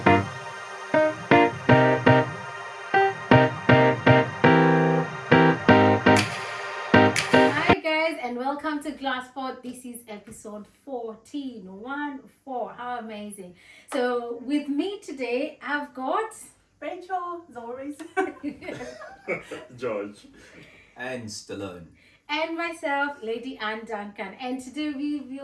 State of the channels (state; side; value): identical; both; correlation 1.00